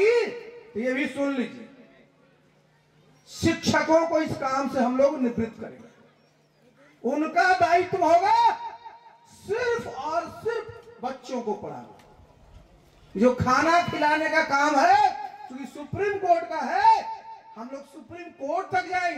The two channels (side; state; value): both; identical; correlation 1.00